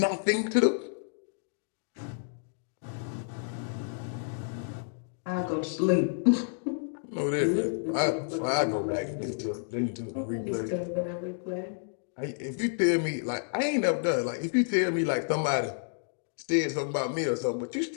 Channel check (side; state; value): right; silent; digital silence